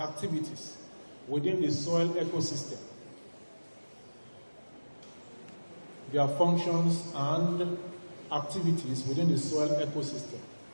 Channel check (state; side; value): inverted; both; correlation -1.00